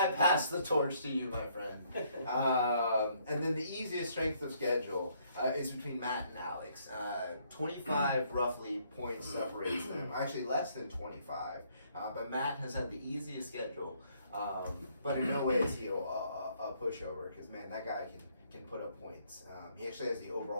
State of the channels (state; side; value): inverted; both; correlation -0.68